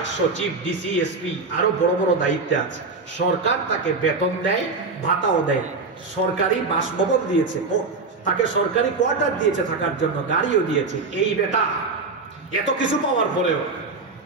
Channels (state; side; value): quieter; left; 4.0 dB